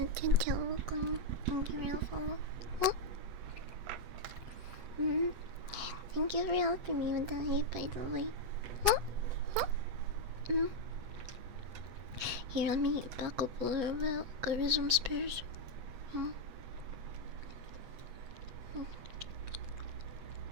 you for the follow. Oh. Thank you for helping me with the hate, by the way. Here, let me back up a little bit. Go to some spares.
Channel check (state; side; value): late; left; 8.1 ms